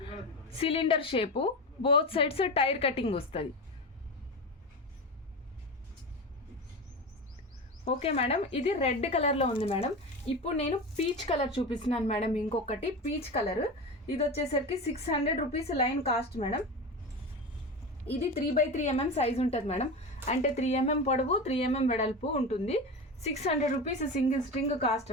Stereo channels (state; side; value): normal; both; correlation 0.24